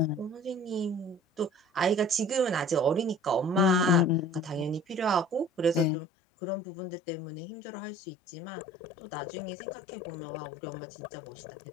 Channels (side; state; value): right; drops out; at 5.9 s